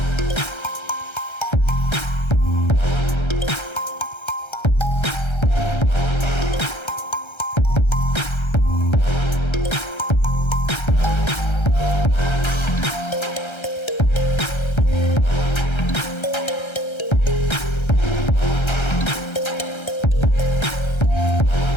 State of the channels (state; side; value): late; right; 1.3 ms